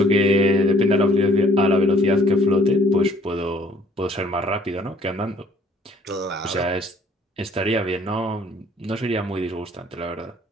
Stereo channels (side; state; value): both; normal; correlation 0.59